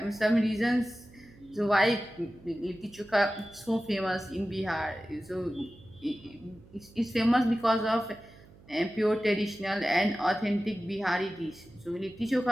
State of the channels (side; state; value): right; noise; hum, 23 dB below the sound